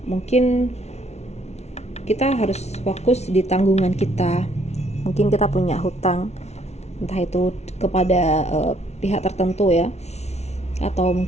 mungkin kita harus fokus di tanggungan kita. Mungkin kita punya hutang, entah itu kepada pihak tertentu ya, atau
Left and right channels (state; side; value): late; right; 0.31 ms